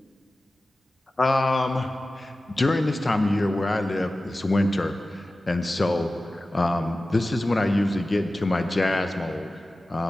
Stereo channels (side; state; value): both; normal; correlation 0.95